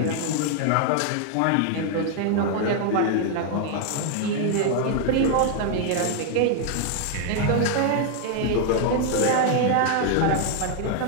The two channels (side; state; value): both; different; correlation 0.00